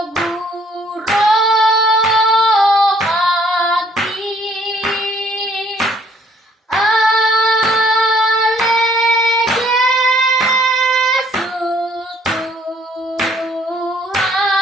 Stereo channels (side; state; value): both; normal; correlation 0.62